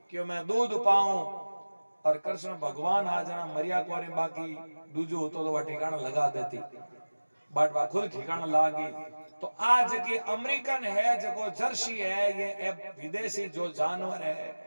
कि मैं दूध पाऊं और कृष्ण भगवान आ जाना मरिया कोरी बाकी दूजो तो वह ठिकाना लगा देती बट वह खुद ठिकाना लागी। तो आज की अमेरिकन है जो जर्सी है ये विदेशी जो जानवर है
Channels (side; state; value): both; inverted; correlation -1.00